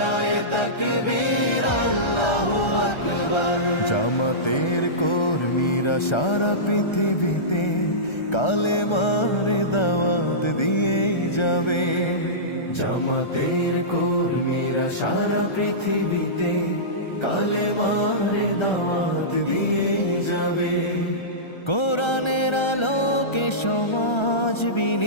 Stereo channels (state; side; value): late; right; 1.3 ms